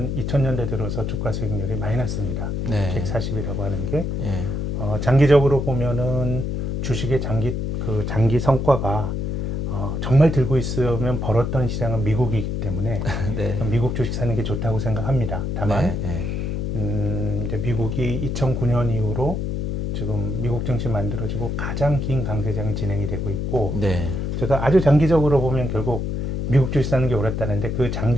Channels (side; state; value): left; noise; hum, 2 dB below the sound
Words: 2000년대 들어서 주가 수익률이 마이너스입니다. 네. 140이라고 하는 게. 예. 장기적으로 보면은 주식의 장기 성과가 정말 들고 있으면 벌었던 시장은 미국이기 때문에 네. 미국 주식 사는 게 좋다고 생각합니다. 다만 네. 이제 미국이 2009년 이후로 지금 미국 증시 만들어지고 가장 긴 강세장이 진행이 되고 있고, 네. 제가 아주 장기적으로 보면 결국 미국 주식 사는 게 옳았다는데, 그